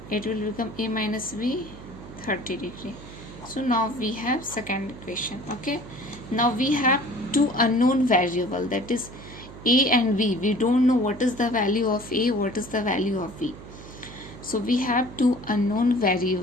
it will become a minus b 30 degree. So now we have second equation. Okay, now we have two unknown variable, that is a and b. We don't know what is the value of a, what is the value of b. So we have two unknown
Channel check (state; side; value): noise; right; hum, 16 dB below the sound